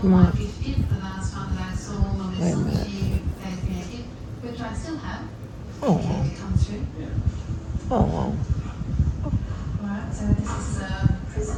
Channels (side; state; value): both; identical; correlation 1.00